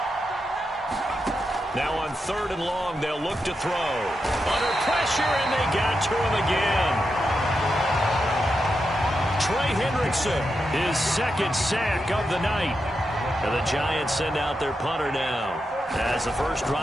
Now on 3rd and long, they'll look to throw. Under pressure, and they got to him again. Trey Hendrickson, his 2nd sack of the night. And the Giants send out their punter now. As the first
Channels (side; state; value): both; normal; correlation 0.87